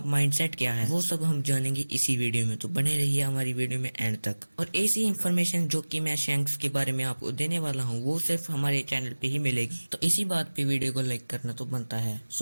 माइंडसेट क्या है, वो सब हम जानेंगे इसी वीडियो में। तो बने रहिए हमारी वीडियो में एंड तक। और ऐसी इन्फॉर्मेशन जो कि मैं शैंक्स के बारे में आपको देने वाला हूँ वो सिर्फ हमारे चैनल पे ही मिलेगी। तो इसी बात पे वीडियो को लाइक करना तो बनता है।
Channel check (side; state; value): both; inverted; correlation -1.00